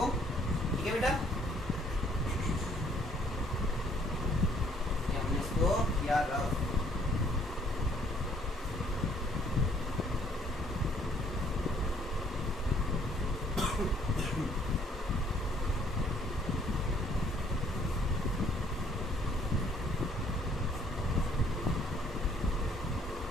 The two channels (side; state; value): both; normal; correlation 0.63